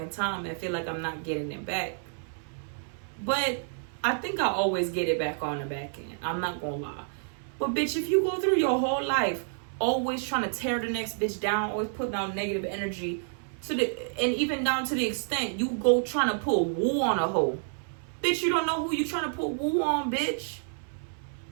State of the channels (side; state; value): left; silent; 58 dB below the other